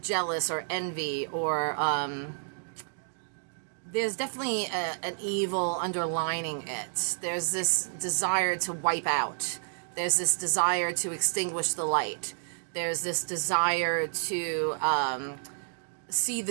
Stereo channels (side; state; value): left; silent; digital silence